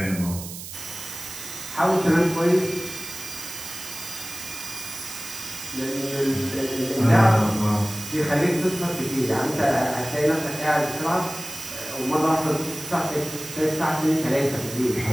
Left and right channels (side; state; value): right; noise; hiss, 11 dB below the sound